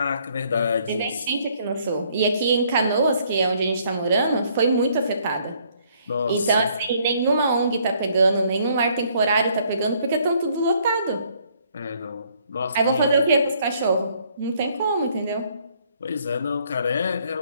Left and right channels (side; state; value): both; inverted; correlation -0.65